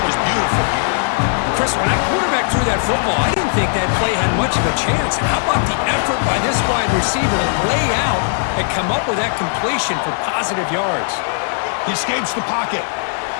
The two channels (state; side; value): silent; right; digital silence